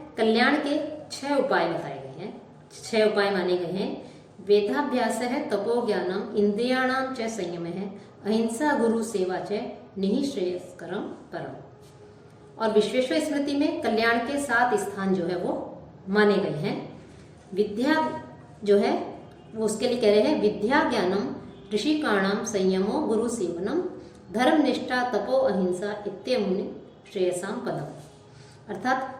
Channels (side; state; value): both; identical; correlation 1.00